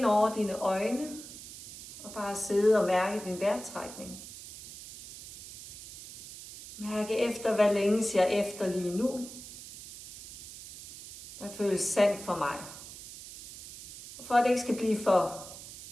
over dine øjne og bare sidde og mærke din vejrtrækning. Mærke efter, hvad længes jeg efter lige nu. Hvad føles sandt for mig? Og for at det ikke skal blive for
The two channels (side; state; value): right; noise; hiss, 14 dB below the sound